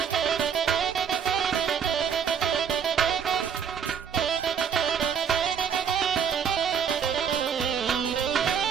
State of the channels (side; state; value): left; quieter; 7.5 dB